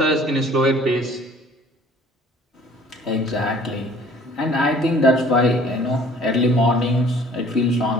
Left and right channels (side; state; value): both; normal; correlation 0.53